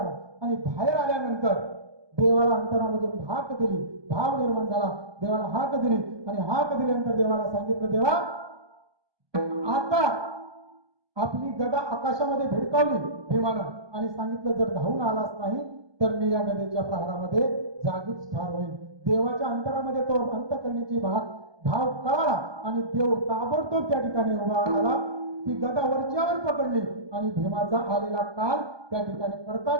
आणि बाहेर आल्यानंतर देवाला अंतरामधून हाक दिली. भाव निर्माण झाला. देवाला हाक दिली आणि हाक दिल्यानंतर देवाला सांगितलं देवा आता आपली गदा आकाशामध्ये भिडकावली भीमानं आणि सांगितलं जर धावून आलाच नाही तर मी या गदेच्या प्रहारामध्ये जागीच ठार होईल. देवाच्या अंतरामध्ये तो अंत करण्याची भाव कळाला आणि देव ताबडतोब त्या ठिकाणी उभा आला. ती गदा वरच्यावर पकडली आणि भीमाचा आलेला काल त्या ठिकाणी करता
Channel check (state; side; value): late; left; 1.2 ms